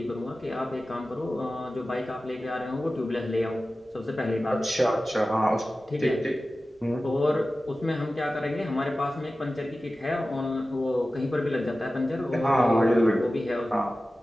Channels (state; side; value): normal; both; correlation 0.95